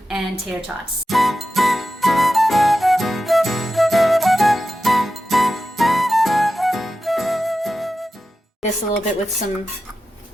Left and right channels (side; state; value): both; normal; correlation 0.92